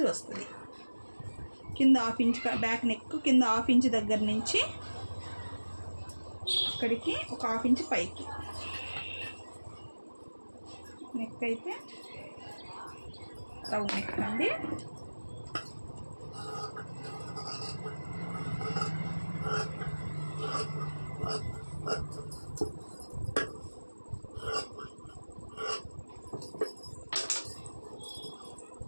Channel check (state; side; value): inverted; both; correlation -1.00